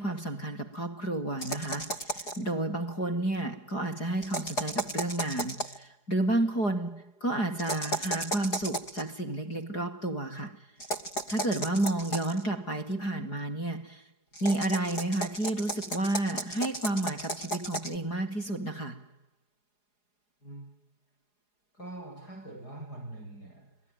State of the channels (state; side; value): late; right; 4.8 ms